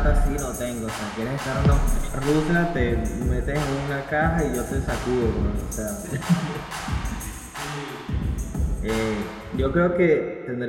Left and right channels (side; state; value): both; identical; correlation 1.00